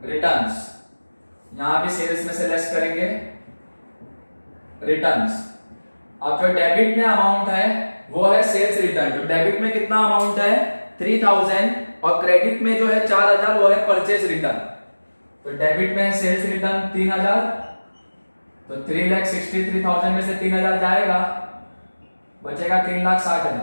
रिटर्न्स। यहां भी सेल्स में से लेस करेंगे रिटर्न्स। अब जो डेबिट में अमाउंट है वो है सेल्स रिटर्न। तो डेबिट में कितना अमाउंट है? 3,000, और क्रेडिट में जो है 4,000, वो है परचेज रिटर्न। तो डेबिट में सेल्स रिटर्न 3,000, तो 3,63,000 में से 3,000 जाएगा, बचेगा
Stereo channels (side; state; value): both; inverted; correlation -1.00